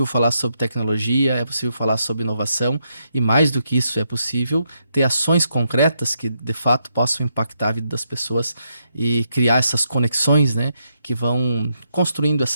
falar sobre tecnologia, é possível falar sobre inovação e, mais do que isso, é possível ter ações concretas que, de fato, possam impactar a vida das pessoas e criar essas conexões, né, que vão construindo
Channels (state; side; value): inverted; both; correlation -0.80